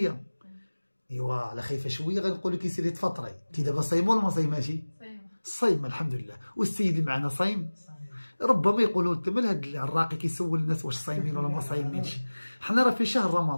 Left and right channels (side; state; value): both; inverted; correlation -1.00